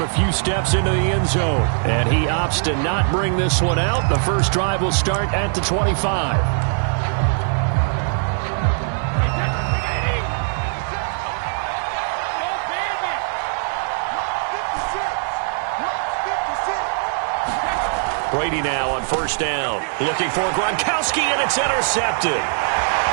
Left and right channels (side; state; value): left; silent; 59 dB below the other